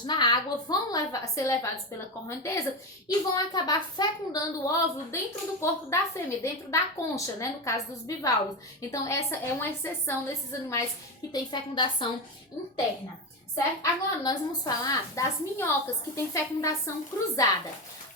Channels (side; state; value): both; normal; correlation 0.16